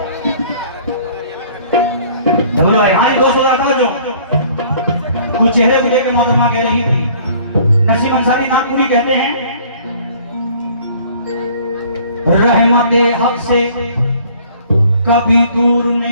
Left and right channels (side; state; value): both; inverted; correlation -0.54